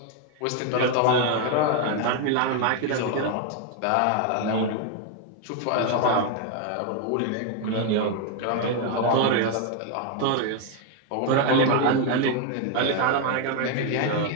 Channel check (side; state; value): both; different; correlation 0.01